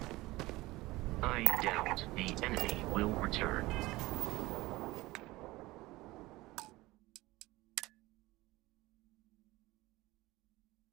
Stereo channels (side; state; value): left; quieter; 19.6 dB